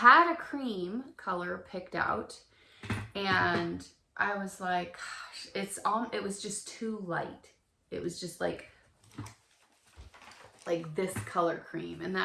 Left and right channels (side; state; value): both; identical; correlation 1.00